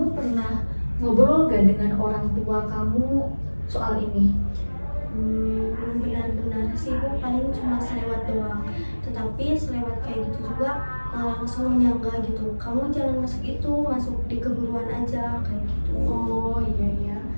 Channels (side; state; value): both; inverted; correlation -1.00